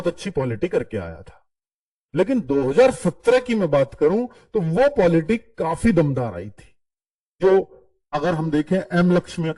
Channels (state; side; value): identical; both; correlation 1.00